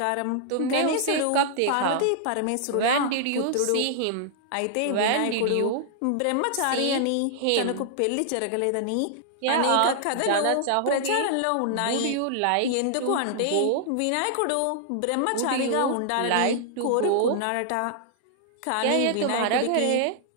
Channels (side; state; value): both; different; correlation -0.01